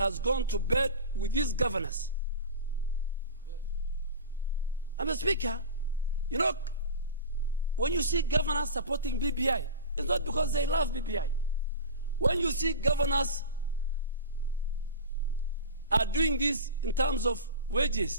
gone to bed with his governors. And Mr. Speaker, you know, when you see governors supporting BBI, it's not because they love BBI. When you see governors are doing this in terms of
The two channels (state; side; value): inverted; both; correlation -0.31